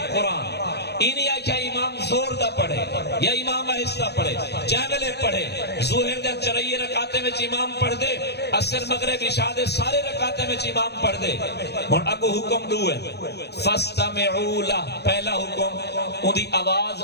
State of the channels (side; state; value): right; late; 0.48 ms